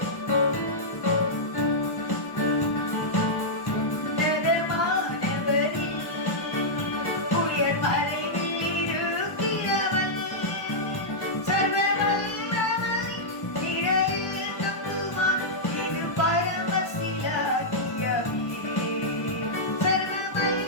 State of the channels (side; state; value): right; late; 1.0 ms